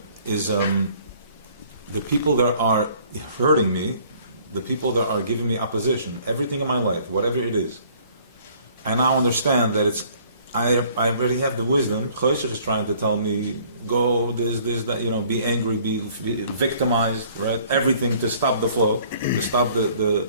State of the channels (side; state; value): both; inverted; correlation -0.57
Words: is the people that are hurting me, the people that are giving me opposition, everything in my life, whatever it is. I now understand that I already have the wisdom. Chosech is trying to tell me, go this, that, be angry, be victimized, right? Everything to stop the flow, to stop